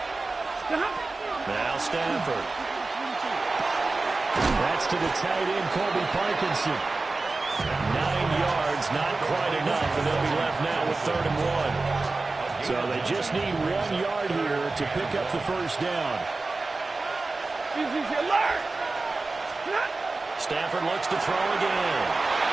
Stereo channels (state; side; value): quieter; left; 3.5 dB